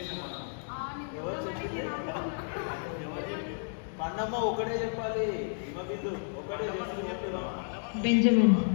ఎవరు చెప్పింది? పండమ్మ ఒకటే చెప్పాలి. హిమబిందు ఒకటే చేసి చెప్తున్నా. బెంజమిన్.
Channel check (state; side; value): silent; right; digital silence